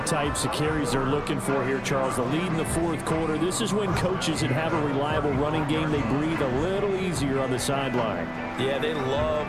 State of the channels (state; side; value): identical; both; correlation 1.00